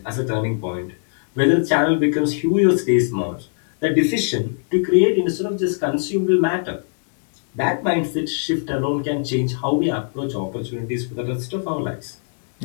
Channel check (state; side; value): silent; right; digital silence